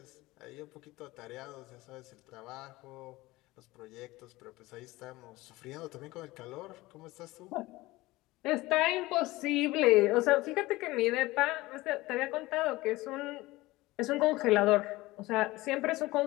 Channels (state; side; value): quieter; right; 19.6 dB